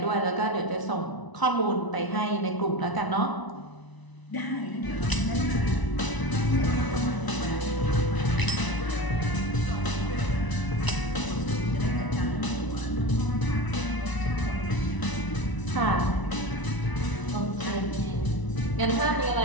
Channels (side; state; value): right; late; 1.0 ms